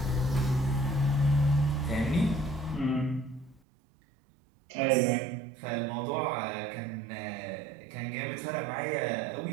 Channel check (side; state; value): left; drops out; at 3.6 s